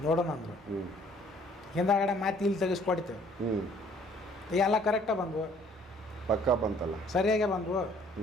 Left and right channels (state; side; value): normal; both; correlation 0.59